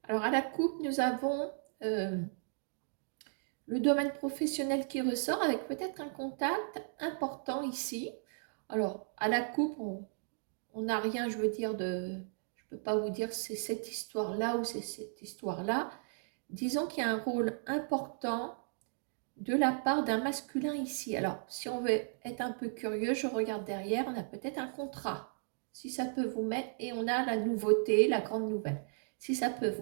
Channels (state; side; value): silent; left; digital silence